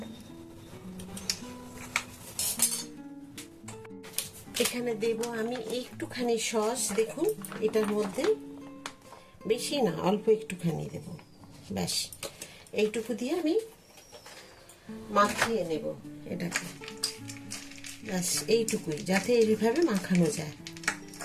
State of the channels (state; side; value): identical; both; correlation 1.00